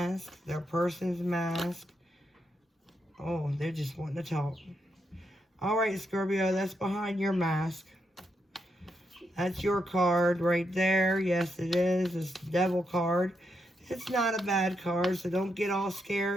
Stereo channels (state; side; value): normal; both; correlation 0.81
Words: Their person's mask? Oh, they're just wanting to talk. Alright, Scorpio, that's behind your mask. That's your card right there. Yes, it is. It's the Devil card. It's not a bad card, so don't get all